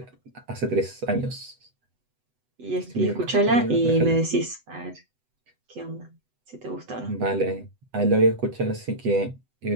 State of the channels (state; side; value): late; left; 8.0 ms